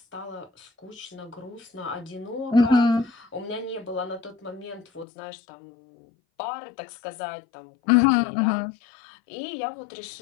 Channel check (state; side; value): drops out; right; at 5.1 s